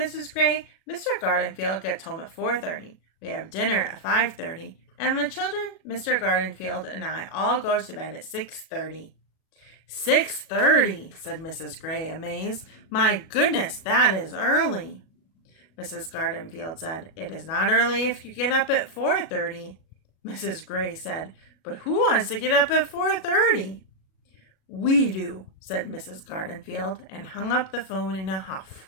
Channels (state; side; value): late; right; 37 ms